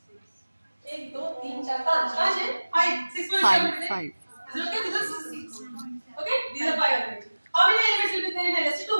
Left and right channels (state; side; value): inverted; both; correlation -1.00